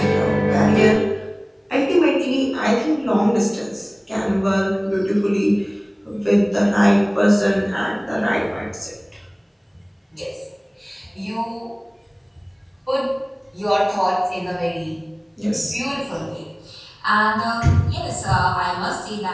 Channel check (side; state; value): both; identical; correlation 1.00